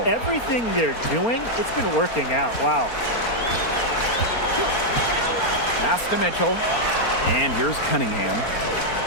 Everything they're doing, it's been working out. Wow. Pass to Mitchell, and here's Cunningham.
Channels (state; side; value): late; right; 4.3 ms